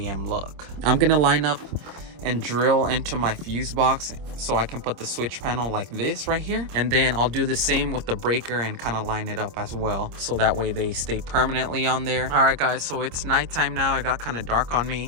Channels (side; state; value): left; late; 26 ms